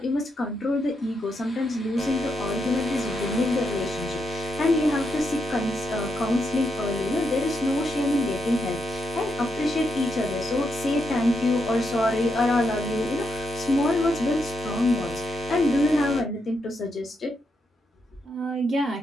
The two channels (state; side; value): normal; both; correlation 0.82